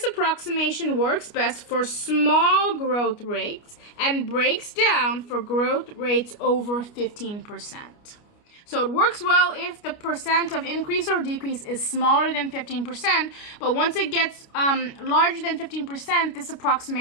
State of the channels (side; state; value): right; late; 29 ms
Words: approximation works best for small growth rates and breaks down for growth rates over 15%. So it works well if the percent of increase or decrease is smaller than 15%, but once it gets larger than 15%, this